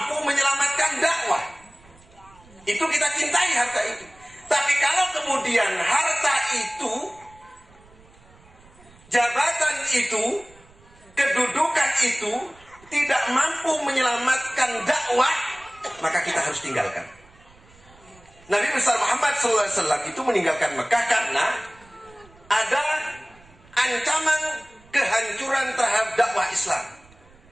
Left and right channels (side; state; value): right; noise; rumble, 27 dB below the sound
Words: menyelamatkan dakwah. Itu kita cintai harta itu. Tapi kalau kemudian harta itu, jabatan itu, kedudukan itu tidak mampu menyelamatkan dakwah, maka kita harus tinggalkan. Nabi besar Muhammad SAW itu meninggalkan Mekah karena ada ancaman kehancuran terhadap dakwah Islam.